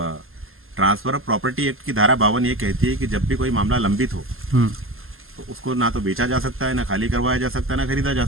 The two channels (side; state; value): left; late; 0.61 ms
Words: ट्रांसफर ऑफ प्रॉपर्टी एक्ट की धारा 52 ये कहती है कि जब भी कोई मामला लंबित हो तो उसको ना तो बेचा जा सकता है, ना खाली करवाया जा सकता है, ना खरीदा जा